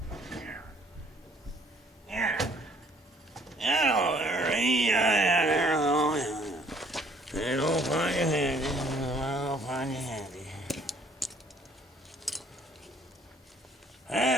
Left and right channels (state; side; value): normal; both; correlation 0.60